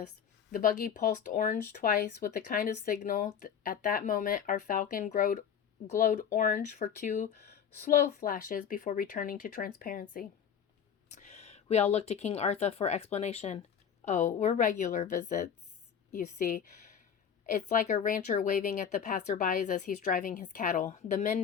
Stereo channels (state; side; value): quieter; right; 7.8 dB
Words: The buggy pulsed orange twice with the kind of signal. At that moment, our Falcon glowed orange for 2 slow flashes before returning to transparency. We all looked to King Arthur for explanation. Oh, we're regular visits, you see. It's like a rancher waving at the passerbys as he's driving his cattle. The men